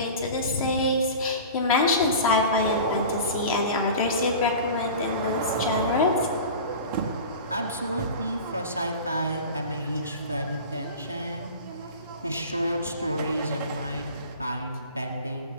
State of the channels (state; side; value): inverted; both; correlation -0.35